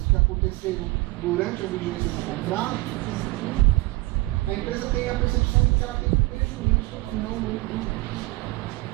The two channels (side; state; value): left; quieter; 21.2 dB